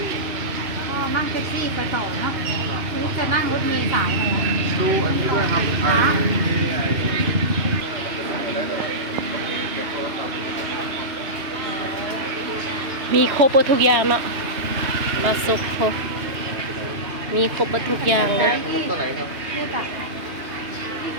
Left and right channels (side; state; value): left; late; 3.0 ms